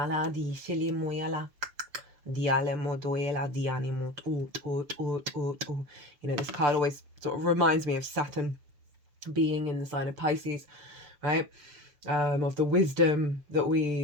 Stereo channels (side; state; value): left; late; 6.8 ms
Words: di shili moyala. Diale modoela dianimo. You know, this card always sort of reminds me of Saturn being in the sign of Pisces, right? Of the wisdom that